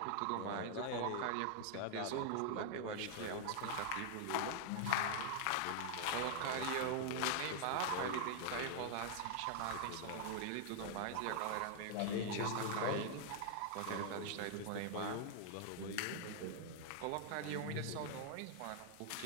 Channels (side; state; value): both; different; correlation -0.01